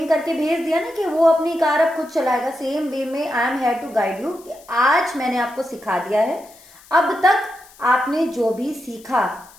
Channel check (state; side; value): noise; left; hiss, 24 dB below the sound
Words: करके भेज दिया ना कि वो अपनी कार अब खुद चलाएगा, सेम वे में I am here to guide you कि आज मैंने आपको सिखा दिया है, अब तक आपने जो भी सीखा